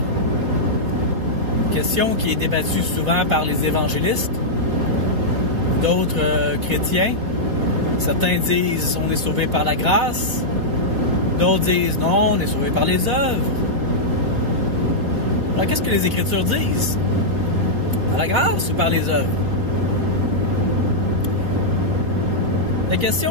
Question qui est débattue souvent par les évangélistes, d'autres chrétiens. Certains disent on est sauvé par la grâce, d'autres disent non, on est sauvé par les œuvres. Alors qu'est-ce que les Écritures disent? Par la grâce ou par les œuvres? La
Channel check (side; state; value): left; late; 3.6 ms